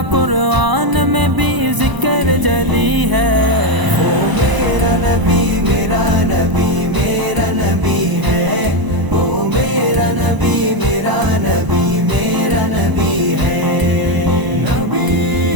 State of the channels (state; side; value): late; left; 1.0 ms